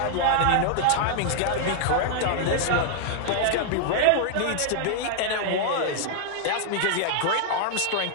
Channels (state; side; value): different; both; correlation 0.00